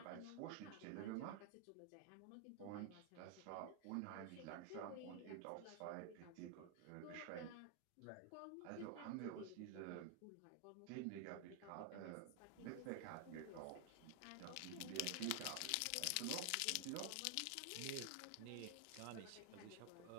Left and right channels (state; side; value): different; both; correlation 0.00